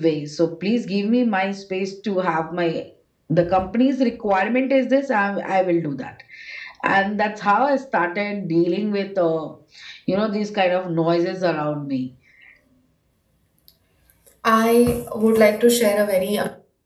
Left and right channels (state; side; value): identical; both; correlation 1.00